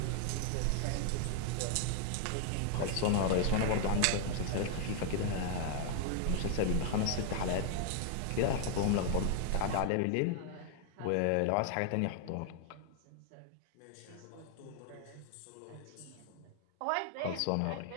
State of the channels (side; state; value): both; different; correlation 0.00